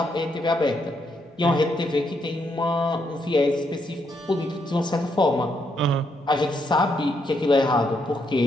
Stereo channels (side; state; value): both; normal; correlation 0.77